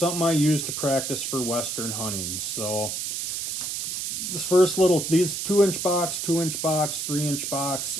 I use to practice for Western hunting. So, this first little, these 2-inch box, 2-inch box, 3-inch box,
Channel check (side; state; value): right; noise; hiss, 3 dB below the sound